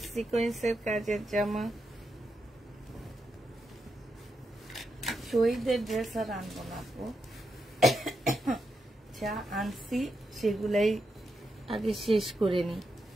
সিকোয়েন্সের কাজের জামা। শহীদের ড্রেস আর আনবো না আপু, যা আনছি সেগুলাই আগে শেষ করে নি।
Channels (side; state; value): both; normal; correlation 0.84